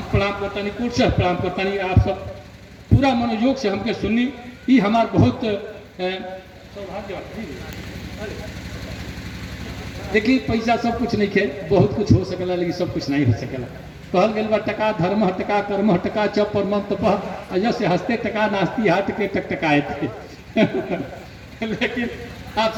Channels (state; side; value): identical; both; correlation 1.00